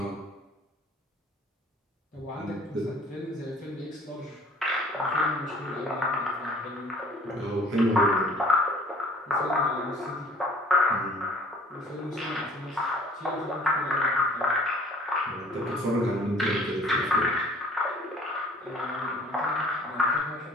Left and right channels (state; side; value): normal; both; correlation 0.52